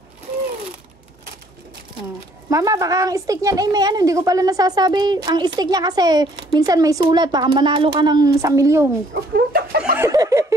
Mama, baka ang stick niyan ay may hindi ko pala nasasabi. Ang stick niya kasi minsan may sulat, baka manalo ka ng 1 milyon.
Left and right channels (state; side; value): normal; both; correlation 0.62